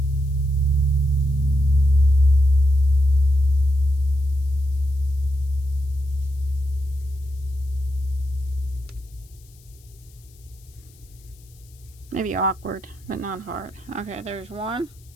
Maybe awkward, but not hard. Okay, there's 1.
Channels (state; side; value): noise; left; hiss, 28 dB below the sound